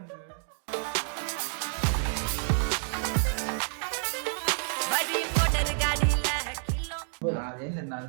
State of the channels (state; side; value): silent; left; 58 dB below the other